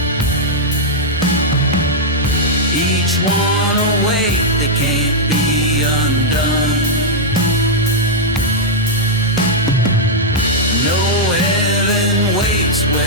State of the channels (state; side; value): normal; both; correlation -0.05